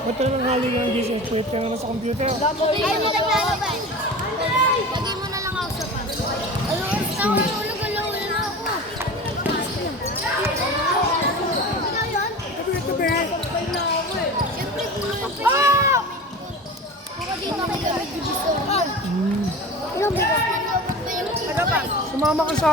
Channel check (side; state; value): both; normal; correlation 0.33